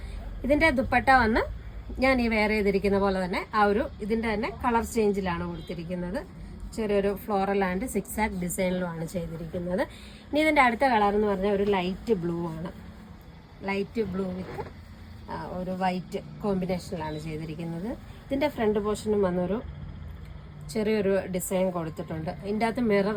ഇതിൻ്റെ ദുപ്പട്ട വന്ന് ഞാൻ ഈ വെയർ ചെയ്തിരിക്കുന്ന പോലെ തന്നെ ഇതിൻ്റെ തന്നെ കളർ ചേഞ്ചിലാണ് കൊടുത്തിരിക്കുന്നത്. ചെറിയൊരു ഫ്ലോറൽ ആൻഡ് സിക്സാക് ഡിസൈനിലുമാണ് ചെയ്തിരിക്കുന്നത്. ഇനി ഇതിൻ്റെ അടുത്ത കളർ എന്ന് പറഞ്ഞാൽ ഒരു ലൈറ്റ് ബ്ലൂ ആണ്. ലൈറ്റ് ബ്ലൂ വിത്ത് ഒരു വൈറ്റ് കോമ്പിനേഷനിലാണ് ചെയ്തിരിക്കുന്നത്. ഇതിൻ്റെ ഫ്രണ്ട് പോർഷനും വന്നൊരു ചെറിയൊരു ഡിസൈൻ കൊടുത്തിട്ടുണ്ട്. ഇതിൻ്റെ അകത്ത്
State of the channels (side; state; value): both; identical; correlation 1.00